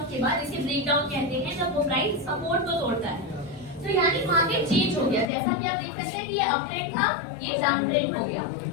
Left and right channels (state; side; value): drops out; right; at 5.3 s